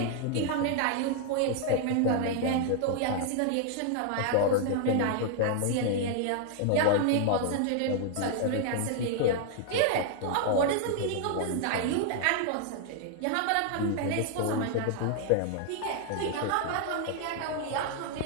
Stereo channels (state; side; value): different; both; correlation 0.00